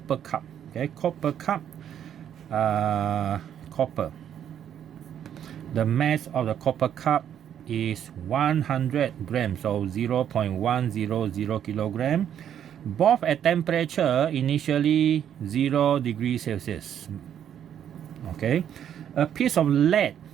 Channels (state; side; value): quieter; left; 9.6 dB